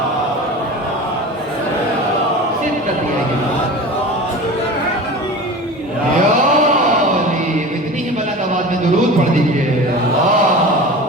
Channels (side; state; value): both; normal; correlation 0.33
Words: اتنی ہی بلند آواز میں درود پڑھ دیجیے.